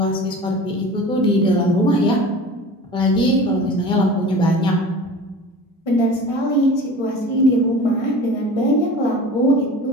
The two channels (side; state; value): both; normal; correlation 0.38